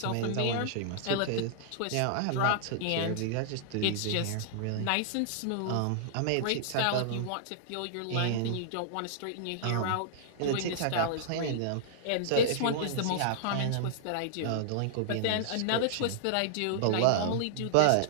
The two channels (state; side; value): different; both; correlation -0.01